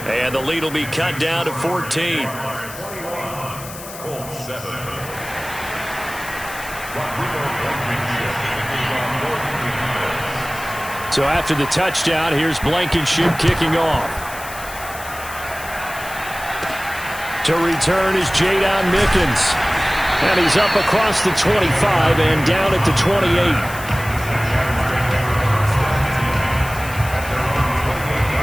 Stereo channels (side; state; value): left; noise; hiss, 14 dB below the sound